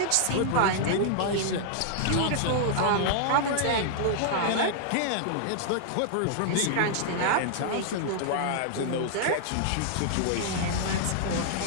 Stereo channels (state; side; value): different; both; correlation -0.01